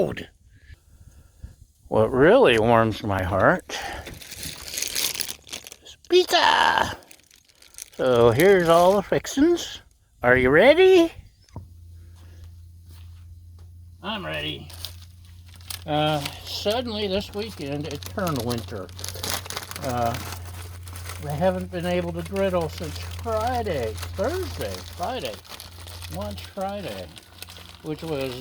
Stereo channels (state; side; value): identical; both; correlation 1.00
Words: What really warms my heart is pizza. So here's all the fixins. Are you ready? I'm ready. Suddenly this weekend it turned winter. I haven't been able to griddle since Friday, lunch Friday, which